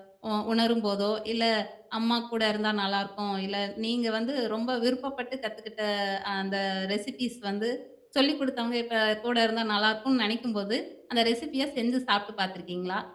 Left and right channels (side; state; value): both; identical; correlation 1.00